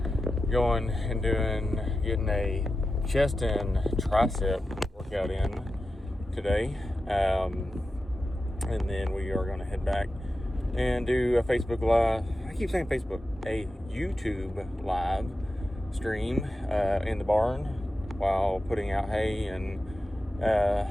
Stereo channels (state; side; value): normal; both; correlation 0.92